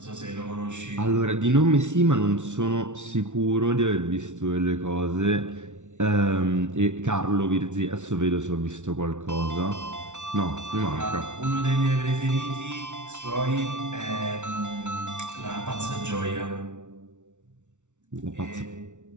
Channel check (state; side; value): late; left; 0.85 ms